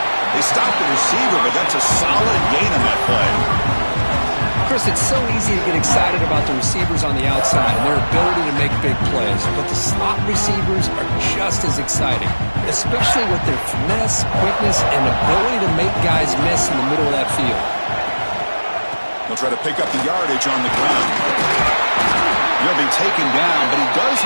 They stopped the receiver, but that's a solid gain on that play. Chris, it's so easy to get excited about the receivers on the outside and their ability to make big plays, but the slot receivers are just as exciting, especially with their finesse, quickness, and ability to make guys miss in the middle of that field. He'll try to pick up the yardage on the ground. He'll be taken down, but he does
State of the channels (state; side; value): inverted; both; correlation -1.00